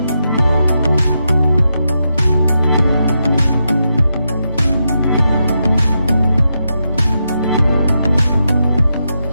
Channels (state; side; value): inverted; both; correlation -0.85